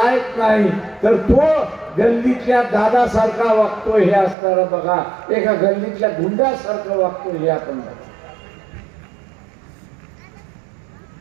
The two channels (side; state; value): left; drops out; at 4.4 s